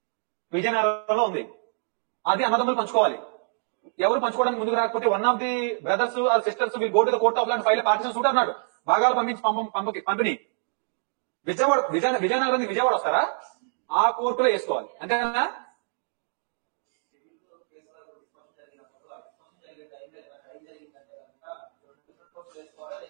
విజయనగరంలో ఉంది, అది అన్నదమ్ములు పంచుకోవాలి. ఎవరు పంచుకోవడానికి ముందుకు రాకపోతే one of the brothers or sisters will go to the court of law and file partition suit అన్నాడు. భాగాలు పంపించి పంపిణీ విజయనగరం విజయవాడ వస్తారా? ఆ కోర్టులో వేసుకోవాలి, అంతేనా?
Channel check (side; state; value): left; silent; digital silence